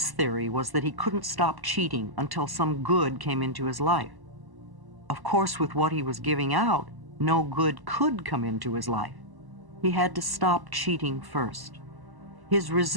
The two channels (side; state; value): left; late; 1.1 ms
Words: theory was that he couldn't stop cheating until some good came into his life. Of course, with what he was giving out, no good could come into his life. He had to stop cheating first. His